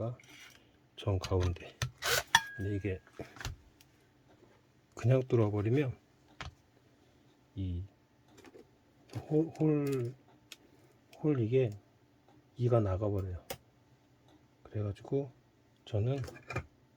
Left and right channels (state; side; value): identical; both; correlation 1.00